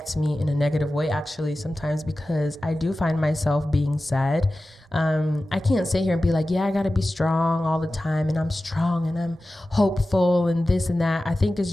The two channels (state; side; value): normal; both; correlation 0.95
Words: me in a negative way, actually, sometimes, because I do find myself being sad. I can't sit here and be like, yeah, I gotta be strong all the time, and I'm strong and I'm hopeful and this and that. I think it's